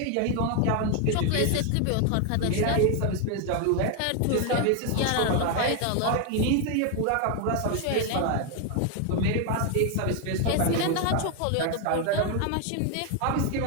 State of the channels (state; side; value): different; both; correlation 0.01